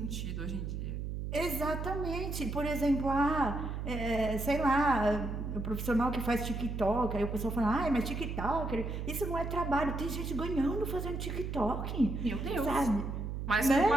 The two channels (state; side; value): noise; right; hum, 4 dB below the sound